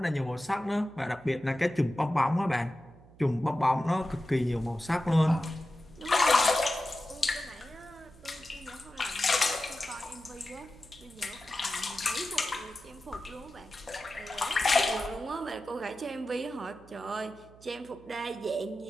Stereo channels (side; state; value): right; noise; hum, 23 dB below the sound